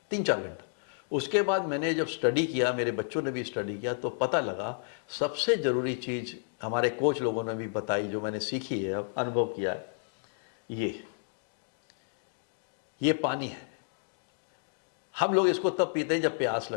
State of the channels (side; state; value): right; silent; digital silence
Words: 3-4 घंटा। उसके बाद मैंने जब स्टडी किया, मेरे बच्चों ने भी स्टडी किया, तो पता लगा सबसे ज़रूरी चीज़ हमारे कोच लोगों ने भी बताई, जो मैंने सीखी है, अब अनुभव किया है, ये पानी है। हम लोग इसको तब पीते हैं जब प्यास